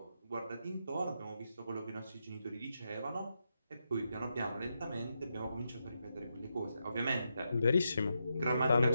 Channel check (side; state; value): both; inverted; correlation -0.85